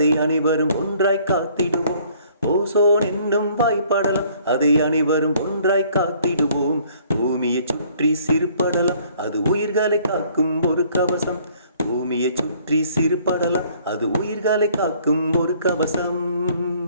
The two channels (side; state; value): both; inverted; correlation -0.60